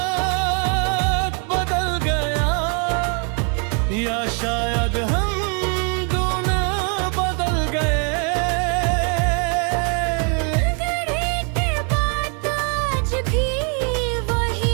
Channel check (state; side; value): quieter; left; 38.7 dB